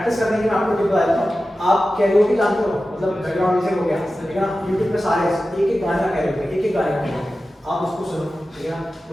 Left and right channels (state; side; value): normal; both; correlation 0.94